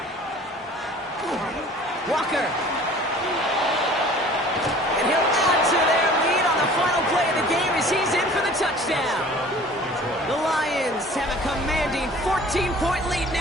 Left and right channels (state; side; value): normal; both; correlation 0.47